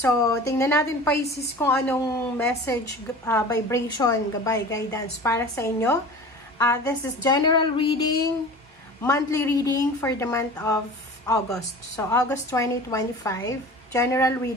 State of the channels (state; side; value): normal; both; correlation 0.38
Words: tingnan natin, Pisces, kung anong message, vibration, gabay, guidance para sa inyo. This is general reading, monthly reading for the month of August. So, August 2025. General